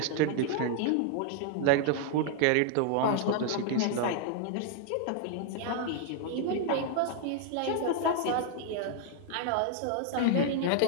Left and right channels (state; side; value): different; both; correlation 0.00